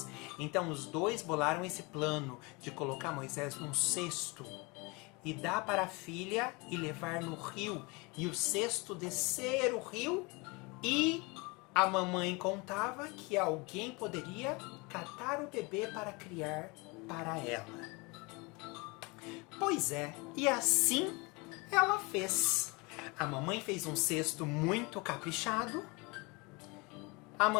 Então os dois bolaram esse plano de colocar Moisés num cesto e dar para a filha e levar no rio. E o cesto descer o rio e a mamãe contava que alguém poderia catar o bebê para criar para ela. Pois é, e assim ela fez. A mamãe fez um cesto muito caprichado. A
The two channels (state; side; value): quieter; right; 27.3 dB